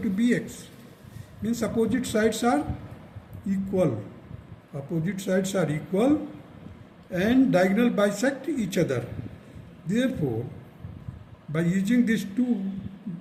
Means opposite sides are equal. Opposite sides are equal and diagonal bisect each other. Therefore by using these two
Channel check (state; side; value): identical; both; correlation 1.00